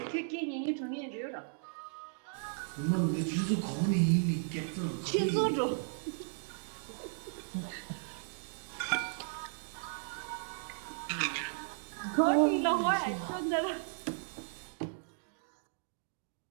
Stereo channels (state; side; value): silent; left; digital silence